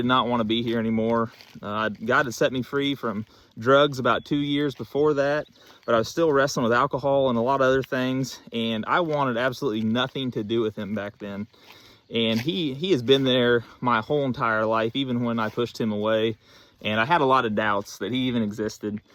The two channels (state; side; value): identical; both; correlation 1.00